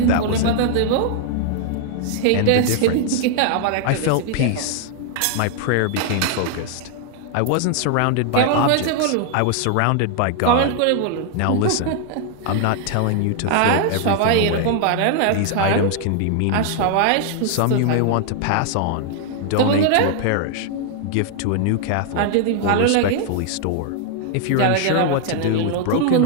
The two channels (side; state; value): both; different; correlation 0.00